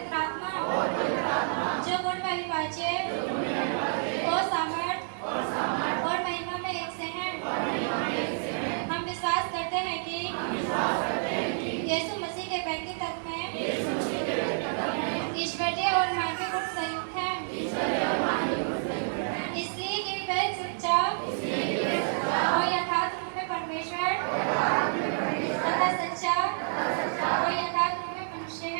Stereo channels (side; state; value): left; silent; digital silence